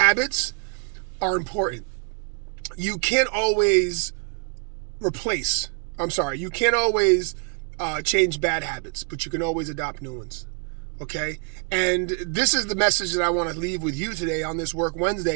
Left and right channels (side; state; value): left; quieter; 38.0 dB